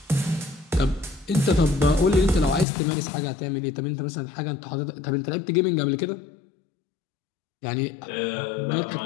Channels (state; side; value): drops out; right; at 2.7 s